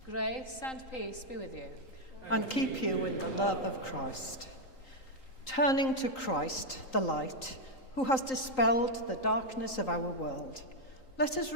Grace and peace be with you. And keep you in the love of Christ. Turning to Christ, the light, who has dispelled the darkness of our world, let us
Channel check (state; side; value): late; right; 3.8 ms